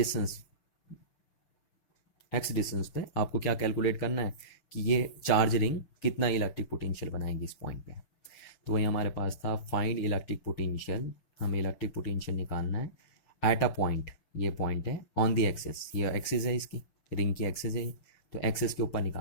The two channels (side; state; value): right; late; 6.8 ms